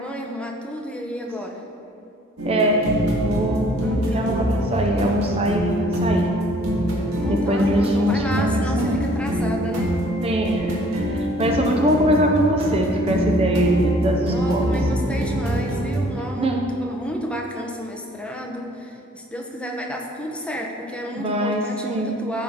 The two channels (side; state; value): both; normal; correlation 0.57